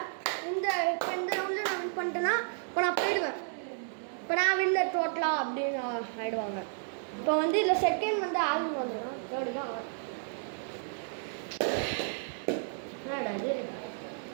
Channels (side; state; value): left; silent; digital silence